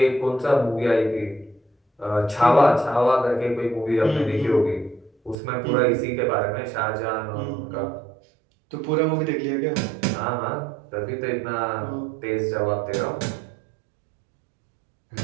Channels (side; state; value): left; drops out; at 5.4 s